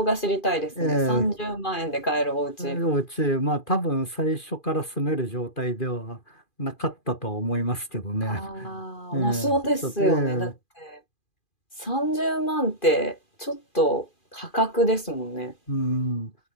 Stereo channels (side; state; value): right; late; 2.4 ms